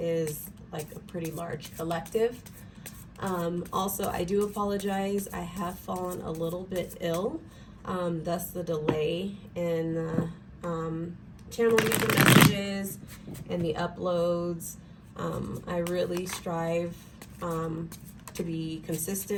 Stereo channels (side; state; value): both; identical; correlation 1.00